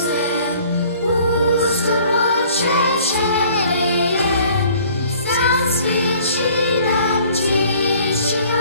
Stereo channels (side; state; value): both; inverted; correlation -0.54